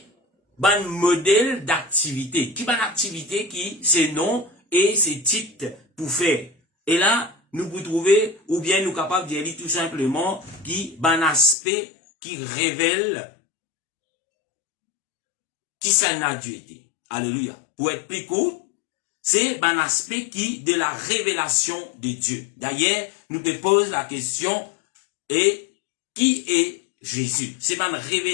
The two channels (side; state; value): right; drops out; at 11.6 s